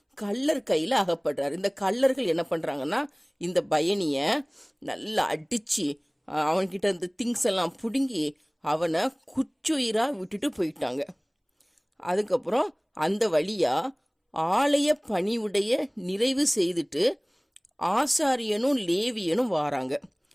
கள்ளர் கையில அகப்படுறாரு. இந்த கள்ளர்கள் என்ன பண்றாங்கன்னா, இந்த பயணிய நல்லா அடிச்சு அவன்கிட்ட இந்த திங்ஸ் எல்லாம் பிடுங்கி அவனை குச்சுயிரா விட்டுட்டு போயிட்டாங்க. அதுக்கப்புறம் அந்த வழியா ஆலய பணிவுடைய நிறைவு செய்துட்டு ஆசாரியனும் லேவியனும் வாராங்க.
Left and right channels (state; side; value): identical; both; correlation 1.00